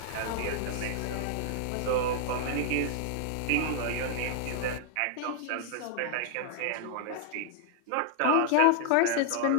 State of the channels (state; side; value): different; both; correlation -0.01